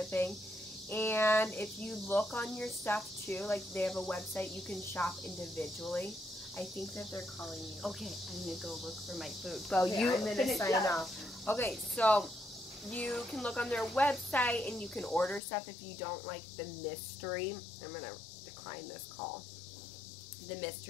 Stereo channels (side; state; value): right; drops out; at 15.4 s